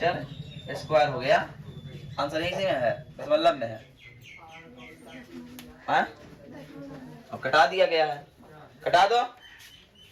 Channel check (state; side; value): identical; both; correlation 1.00